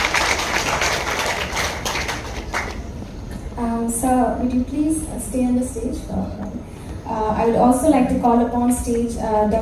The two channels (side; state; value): both; identical; correlation 1.00